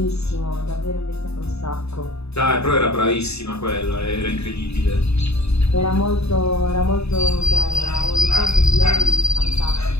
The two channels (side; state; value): right; late; 0.79 ms